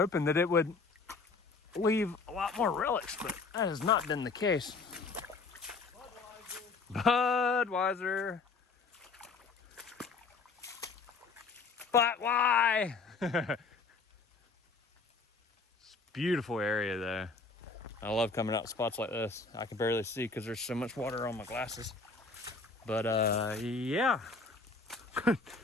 that it would leave a lot more relics, but that has not been the case. Budweiser. But why? It's a beautiful area though. I love coming out spots like this. I can barely see because there's so much water on my glasses. But yeah.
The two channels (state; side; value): quieter; right; 4.2 dB